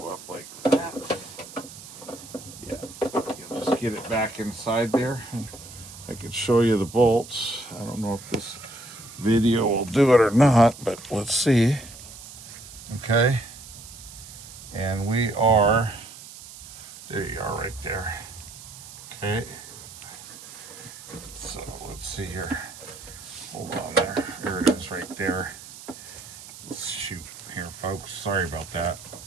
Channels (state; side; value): noise; right; hiss, 15 dB below the sound